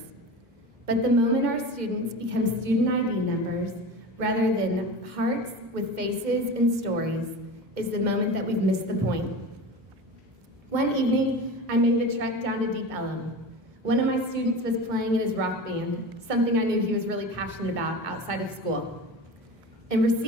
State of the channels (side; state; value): both; normal; correlation 0.31